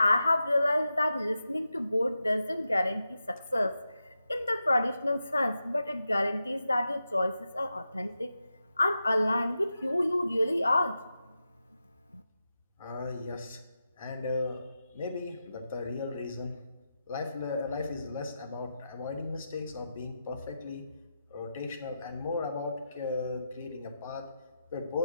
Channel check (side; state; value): both; inverted; correlation -0.89